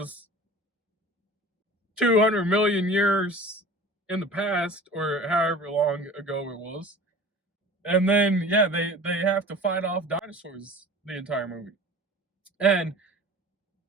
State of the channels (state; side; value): normal; both; correlation 0.42